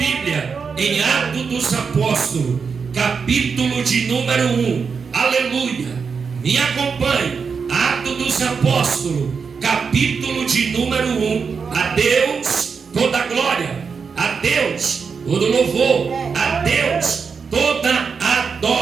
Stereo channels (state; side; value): quieter; left; 5.6 dB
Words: em Atos dos Apóstolos, capítulo de número 1, aleluia, me acompanhe. Atos dos Apóstolos, capítulo de número 1. A Deus toda a glória, a Deus todo louvor, a Deus toda